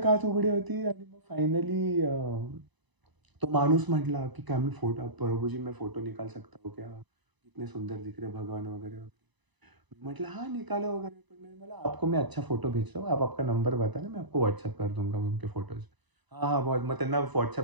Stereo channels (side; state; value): left; late; 1.0 ms